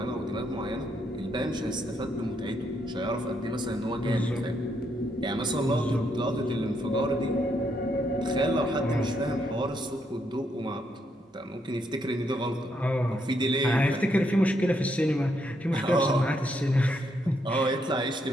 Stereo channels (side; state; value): both; normal; correlation 0.76